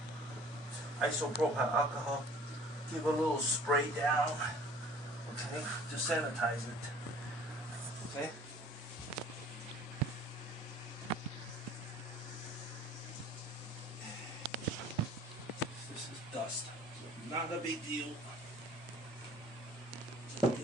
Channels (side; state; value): both; normal; correlation 0.50